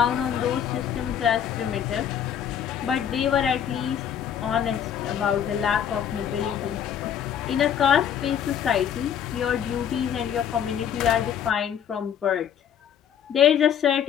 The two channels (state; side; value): quieter; right; 9.0 dB